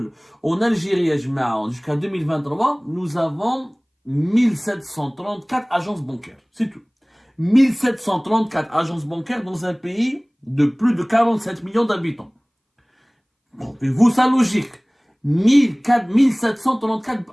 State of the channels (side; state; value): both; identical; correlation 1.00